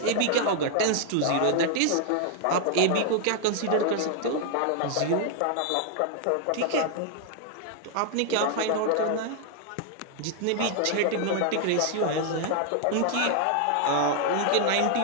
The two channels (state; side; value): different; both; correlation 0.00